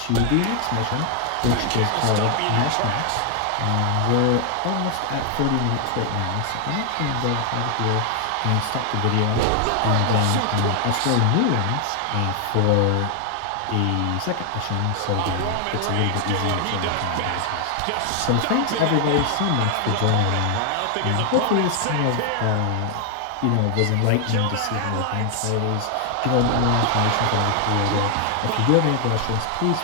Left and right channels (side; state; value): both; different; correlation 0.00